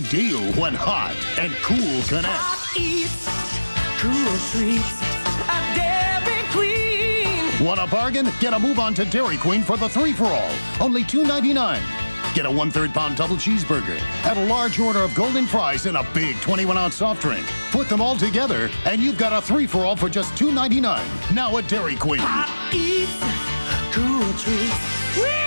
deal when hot and cool connect. Eats, cool treats, a Dairy Queen. Want a bargain? Get a move on to Dairy Queen for the 3-for-all. Only $2.99. Get a 1/3 pound double cheeseburger. Add a large order of golden fries and a big 21-ounce soft drink. Put them all together, and you've got a 3-for-all for just $2.99. Now at Dairy Queen. Hot eats, cool treats, we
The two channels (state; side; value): inverted; both; correlation -1.00